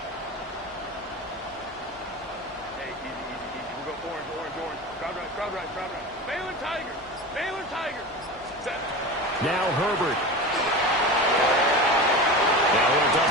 Now Herbert. Now he'll dump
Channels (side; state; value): both; normal; correlation 0.29